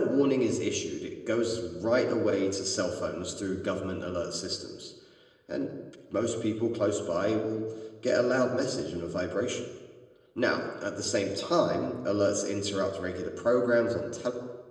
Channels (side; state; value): both; identical; correlation 1.00